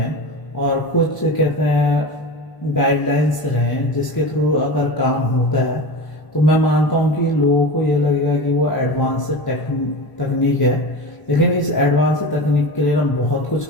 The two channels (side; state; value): right; late; 1.0 ms